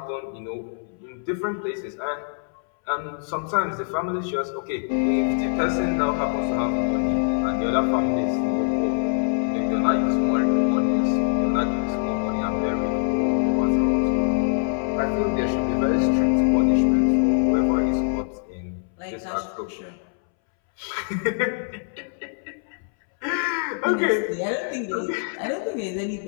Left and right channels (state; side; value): silent; right; 63 dB below the other